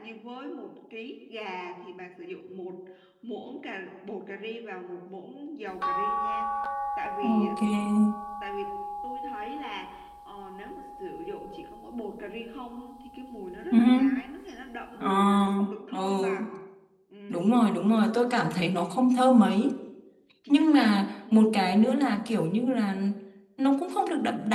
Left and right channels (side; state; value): both; identical; correlation 1.00